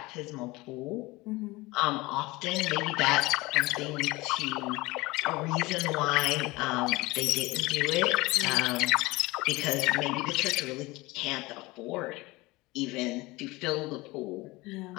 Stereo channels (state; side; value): quieter; right; 21.9 dB